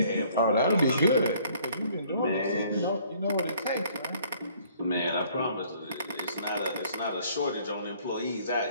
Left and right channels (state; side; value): inverted; both; correlation -0.59